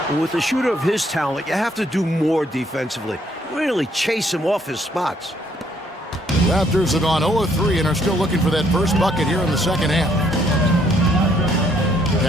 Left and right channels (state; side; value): normal; both; correlation 0.67